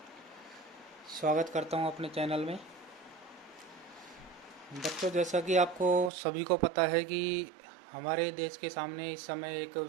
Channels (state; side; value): drops out; left; at 6.1 s